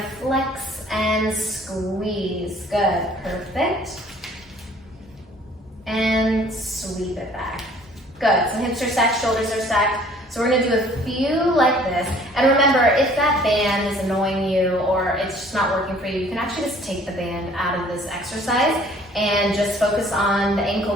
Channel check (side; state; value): both; normal; correlation 0.55